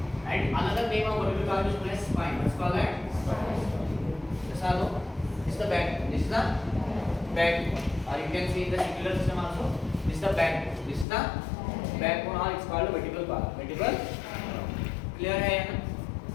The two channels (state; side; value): drops out; right; at 11.1 s